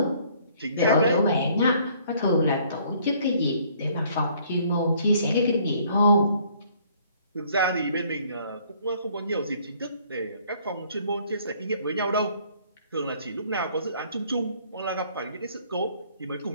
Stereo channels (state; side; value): inverted; both; correlation -0.60